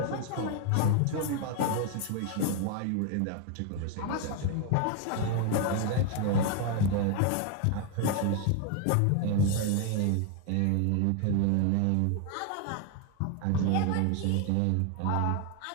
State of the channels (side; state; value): both; different; correlation 0.01